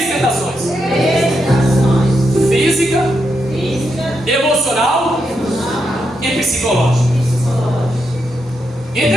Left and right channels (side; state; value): both; normal; correlation 0.83